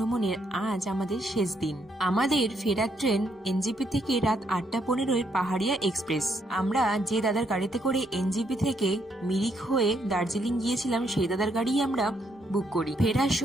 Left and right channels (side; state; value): both; normal; correlation 0.74